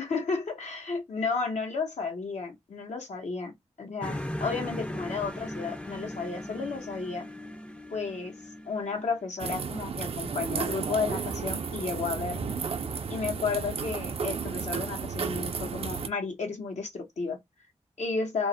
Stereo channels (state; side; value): normal; both; correlation 0.49